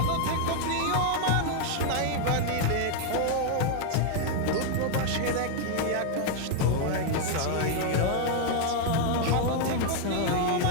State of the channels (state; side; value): different; both; correlation 0.00